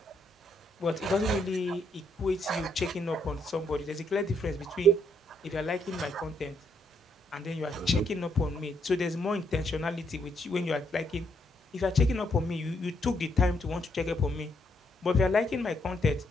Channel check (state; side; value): normal; both; correlation 0.74